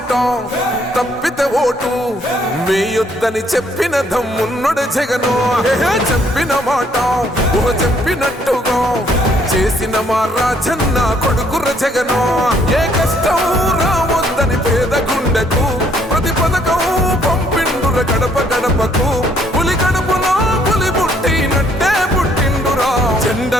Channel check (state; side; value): normal; both; correlation 0.66